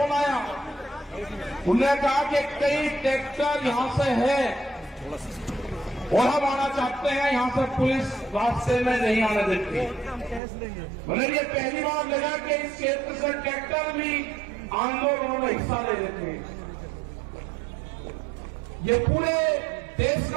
आया। उन्होंने कहा कि कई ट्रैक्टर यहां से है और हम आना चाहते हैं, यहां से पुलिस रास्ते में नहीं आने देती। मतलब ये पहली बार लगा कि इस क्षेत्र से ट्रैक्टर भी आंदोलन में हिस्सा ले लेते हैं। ये पूरे देश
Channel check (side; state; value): left; drops out; at 10.4 s